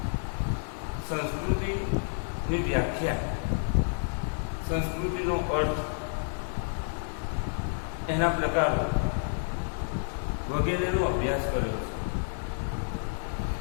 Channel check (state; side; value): silent; right; digital silence